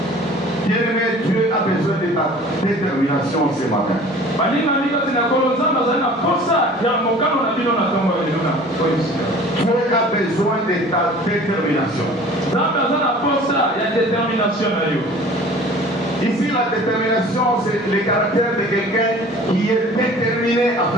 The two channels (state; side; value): normal; both; correlation 0.46